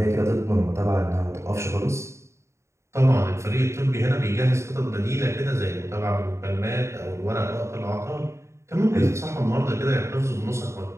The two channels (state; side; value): late; left; 0.14 ms